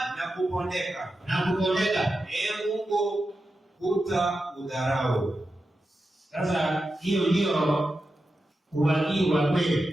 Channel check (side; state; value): both; normal; correlation 0.90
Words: na kupondeka. Mungu hutaudharau. Sasa hiyo ndio uwakili wa